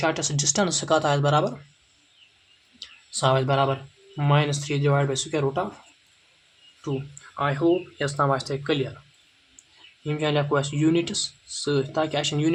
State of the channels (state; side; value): identical; both; correlation 1.00